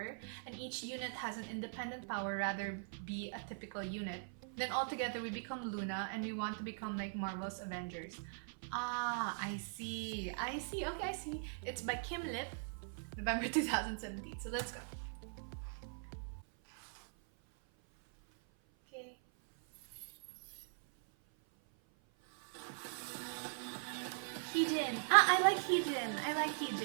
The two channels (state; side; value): silent; left; 50 dB below the other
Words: and each unit has an independent power rather be a typical unit. Then all together we become Loona and we want to become like Marvel's Avengers. Ah, I see. Okay, I see. It's by Kim Lip, November 2017. So let's go. Okay. Heejin. Ah, I like Heejin. I like